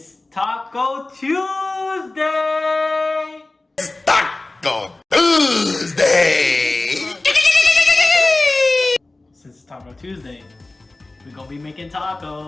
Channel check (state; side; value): quieter; right; 3.0 dB